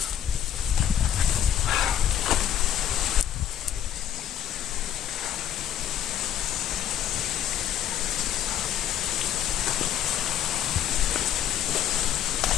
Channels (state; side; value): quieter; right; 10.2 dB